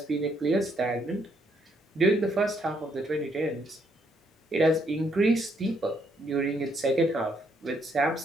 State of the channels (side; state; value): both; normal; correlation 0.72